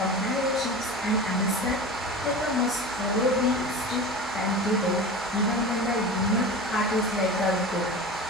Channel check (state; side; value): normal; both; correlation 0.32